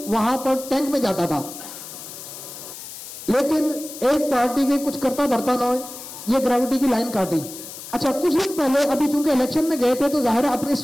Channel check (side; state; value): left; noise; hiss, 12 dB below the sound